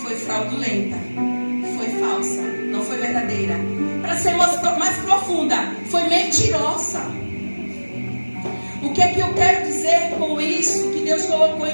foi fraudulenta, foi falsa, não foi verdadeira. Para ser mais profunda, foi mentirosa. O que é que eu quero dizer com isso que Deus colocou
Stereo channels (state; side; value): inverted; both; correlation -1.00